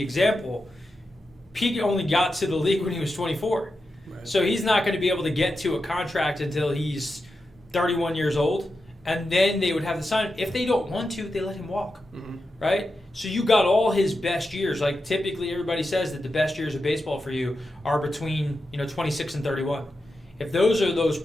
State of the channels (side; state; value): both; normal; correlation 0.89